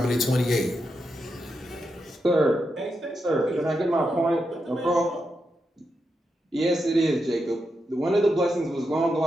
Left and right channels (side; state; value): both; normal; correlation 0.85